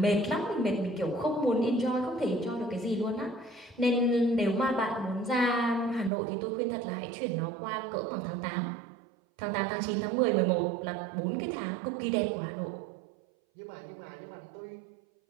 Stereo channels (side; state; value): left; drops out; at 6.1 s